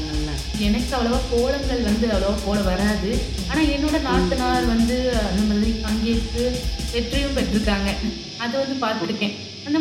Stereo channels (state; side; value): identical; both; correlation 1.00